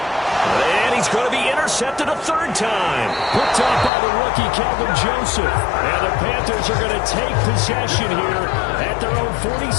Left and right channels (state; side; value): drops out; right; at 3.9 s